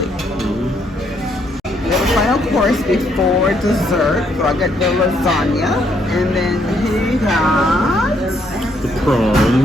We have a final course before dessert. So I got the lasagna. And then he got The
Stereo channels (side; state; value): both; normal; correlation 0.71